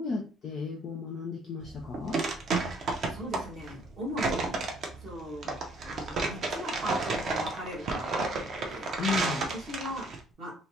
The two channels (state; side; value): normal; both; correlation 0.62